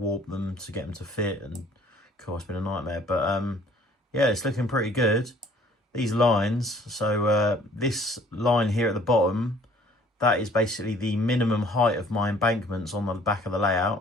them to get them to fit. And of course, it's been a nightmare, but yeah, it's looking pretty good. These lines, so this line here at the bottom, that is basically the minimum height of my embankments on the back of the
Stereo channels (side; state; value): both; normal; correlation 0.56